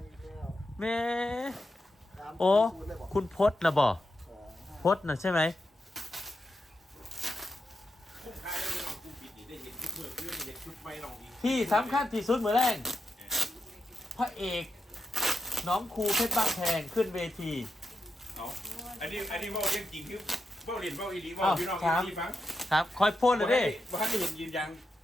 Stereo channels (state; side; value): normal; both; correlation 0.86